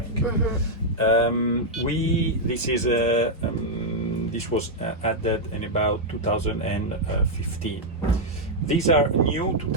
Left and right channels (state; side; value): normal; both; correlation -0.03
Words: This was added in about 2015. These are new